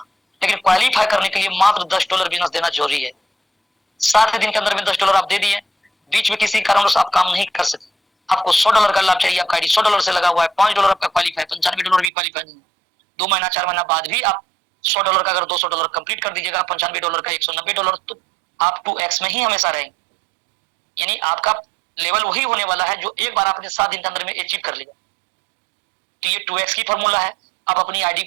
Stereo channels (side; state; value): left; drops out; at 12.1 s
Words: लेकिन क्वालिफाई करने के लिए मात्र $10 बोनस देना जरूरी है। 7 दिन के अंदर में $10 आप दे दिए, बीच में किसी कारणवश आप काम नहीं कर सकते, आपको $100 का लाभ चाहिए, आपका आईडी $100 से लगा हुआ है, $5 आपका क्वालिफाई, $95 भी क्वालिफाई नहीं है। 2 महीना 4 महीना बाद भी आप $100 का अगर $200 कंप्लीट कर दीजिएगा, $95 का $190, तो आप 2x में ही हमेशा रहेंगे, यानी आपका लेवल वही होने वाला है जो एक बार आपने 7 दिन के अंदर में अचीव कर लिया। तो ये 2x की फॉर्मूला है। आप अपनी आईडी